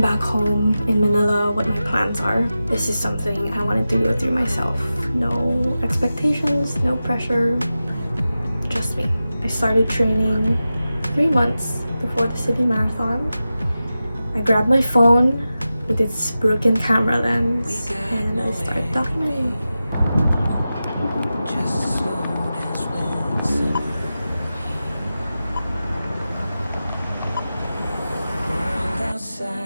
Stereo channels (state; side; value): inverted; both; correlation -0.93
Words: home in Manila what my plans are. This is something I wanted to go through myself. No expectations, no pressure, just me. I started training 3 months before the Sydney Marathon. I grabbed my phone with its broken camera lens and I started documenting.